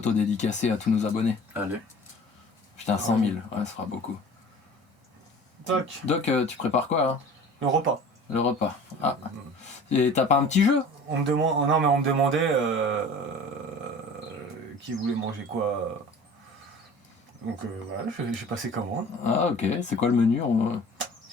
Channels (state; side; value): normal; both; correlation 0.43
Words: dédicacée à tous nos abonnés. Allez. Putain, 100 000, ouais, ça fera beaucoup. Tac, Doc, tu prépares quoi, hein? le repas. Le repas. Ah. Et t'as pas un petit jeu? On me demandait qui voulait manger quoi. Donc voilà, j'ai passé commande, Ah, ok, c'est quoi le menu?